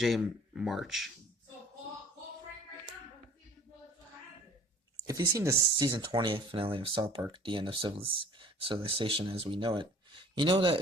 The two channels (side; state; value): both; normal; correlation 0.50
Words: March. If you've seen the Season 20 finale of South Park, the end of Civilization as we know it, you know